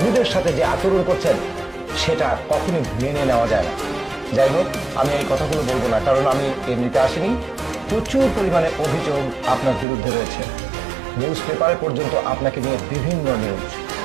সাথে যে আচরণ করছেন, সেটা কখনই মেনে নেওয়া যায় না। যাই হোক, আমি এই কথাগুলো বলবো না, কারণ আমি এমনিতে আসিনি। প্রচুর পরিমাণে অভিযোগ আপনার বিরুদ্ধে রয়েছে। নিউজ পেপারে পর্যন্ত আপনাকে নিয়ে বিভিন্ন নিউজ।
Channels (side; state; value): left; drops out; at 9.9 s